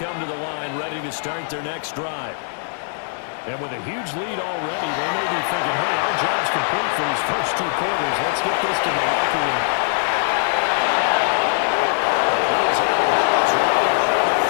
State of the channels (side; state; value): right; silent; 65 dB below the other